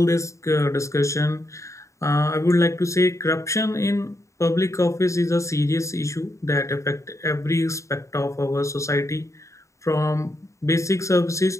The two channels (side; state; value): right; late; 0.15 ms